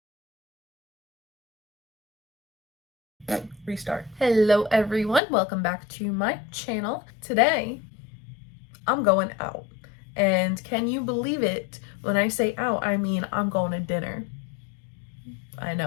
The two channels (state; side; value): drops out; right; at 5.2 s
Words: Restart. Hello everyone, welcome back to my channel. Today I'm going out, and can you believe it? When I say out, I mean I'm going to dinner. I